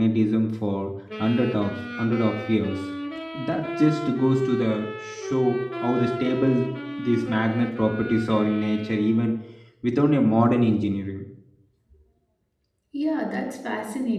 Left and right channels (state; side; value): identical; both; correlation 1.00